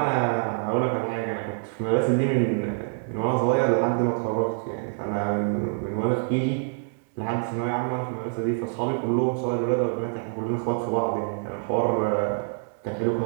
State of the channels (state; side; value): silent; left; 61 dB below the other